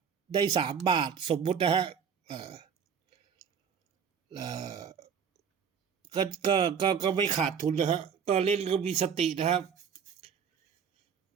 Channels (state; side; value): quieter; left; 7.1 dB